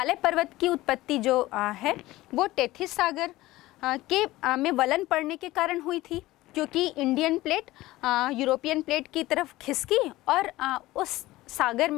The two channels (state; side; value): quieter; right; 17.8 dB